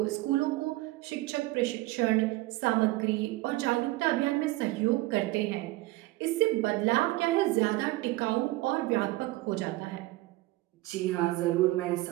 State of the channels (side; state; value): left; quieter; 19.1 dB